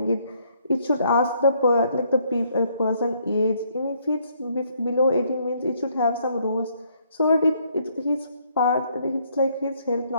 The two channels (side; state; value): both; inverted; correlation -0.68